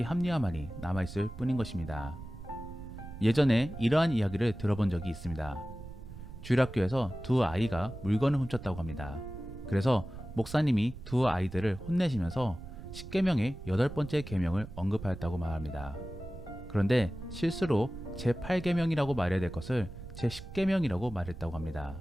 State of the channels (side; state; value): right; noise; rumble, 13 dB below the sound